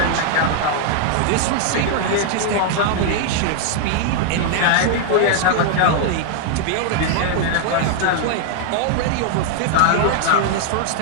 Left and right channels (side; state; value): both; different; correlation 0.00